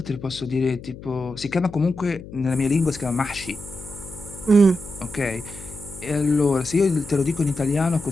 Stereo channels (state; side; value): noise; left; hum, 15 dB below the sound